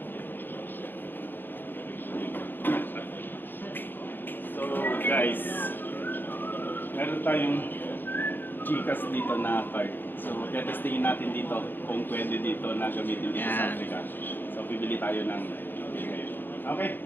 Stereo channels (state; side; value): late; right; 0.095 ms